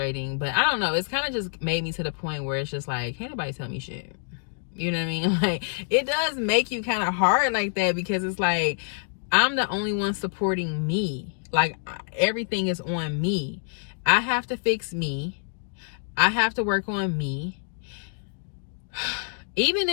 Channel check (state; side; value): silent; right; digital silence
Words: But I don't know, it's kind of just made me to the point where it's just like, can't nobody tell me shit. You know what I mean? Like, it does make you kind of hard like that, because it's like, I'm the only one supporting me. Like, everything is on me. I have to fix me. I have to work on me. Even